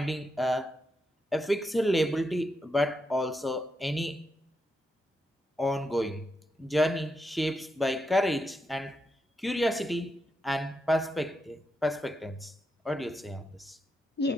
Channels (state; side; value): normal; both; correlation 0.84